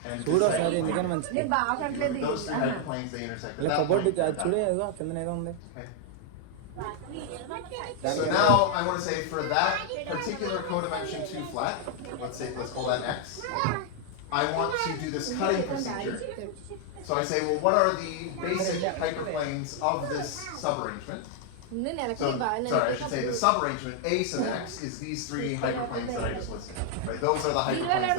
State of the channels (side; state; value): both; different; correlation 0.00